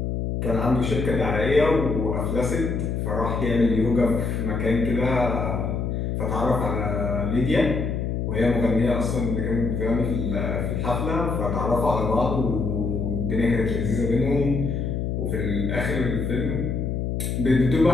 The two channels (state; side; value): noise; left; hum, 1 dB below the sound